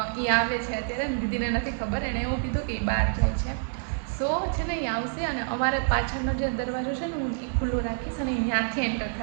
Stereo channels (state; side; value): silent; left; digital silence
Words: એ આવે છે અત્યારે. દીદીને નથી ખબર, એણે એવું કીધું કે એ બહાર જાય છે. સો છે ને એ આવશે અને અમારે પાછળનો જે દરવાજો છે ને હું એ ખુલ્લો રાખીશ અને ત્યાંથી એન્ટર